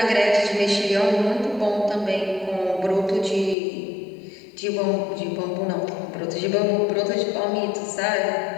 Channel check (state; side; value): drops out; right; at 3.6 s